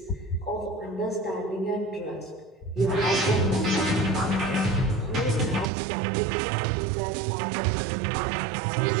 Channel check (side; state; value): left; drops out; at 5.7 s